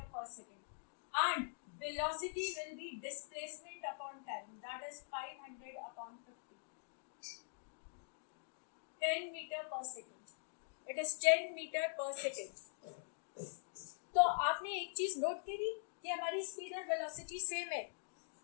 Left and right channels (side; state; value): right; silent; digital silence